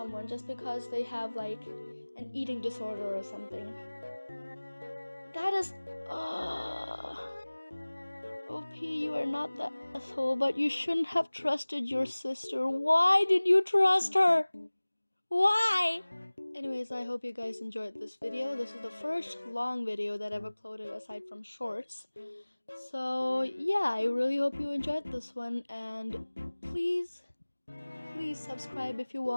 just because they have like an eating disorder or something. That is OP, you are not the asshole, but you shouldn't have trusted your sister. Why did you trust her? Why? Anyways, I hope you guys enjoyed this video. This is the first long video that I've uploaded aside from shorts. So yeah, I really hope you enjoyed this one, and please subscribe if you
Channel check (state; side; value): inverted; both; correlation -1.00